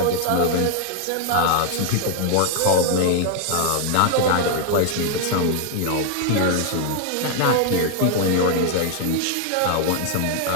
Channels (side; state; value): both; different; correlation 0.00